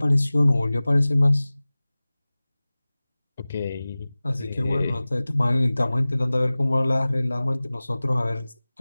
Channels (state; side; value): inverted; both; correlation -0.98